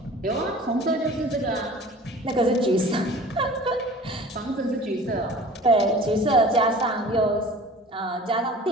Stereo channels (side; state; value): both; normal; correlation 0.43